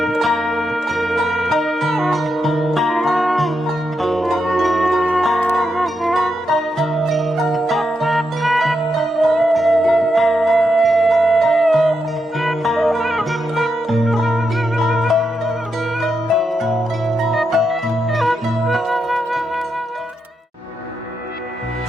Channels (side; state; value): both; normal; correlation 0.84